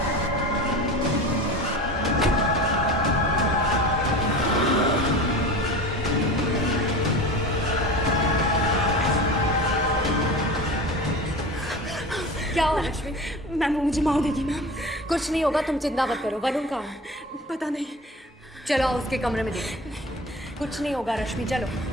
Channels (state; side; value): normal; both; correlation 0.34